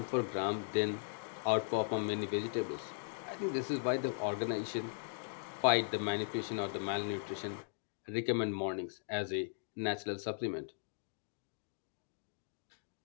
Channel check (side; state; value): right; silent; digital silence